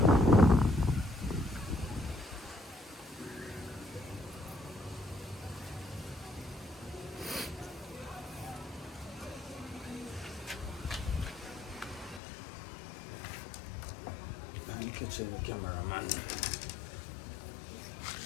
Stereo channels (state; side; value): drops out; right; at 12.2 s